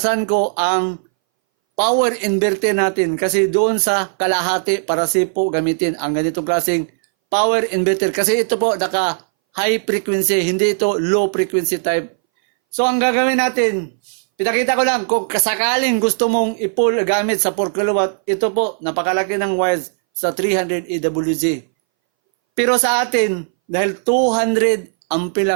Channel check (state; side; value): silent; left; 63 dB below the other